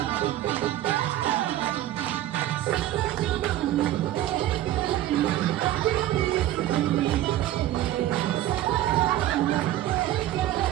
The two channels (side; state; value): left; quieter; 13.6 dB